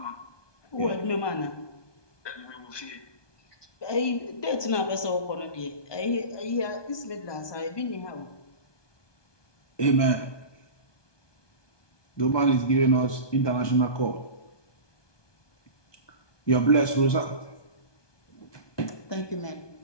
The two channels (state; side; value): late; right; 1.2 ms